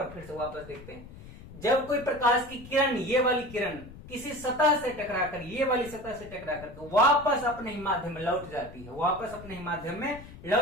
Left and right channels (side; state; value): left; noise; rumble, 17 dB below the sound